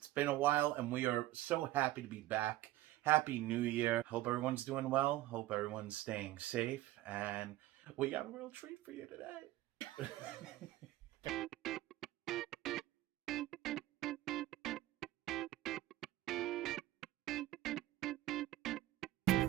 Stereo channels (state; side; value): quieter; left; 15.9 dB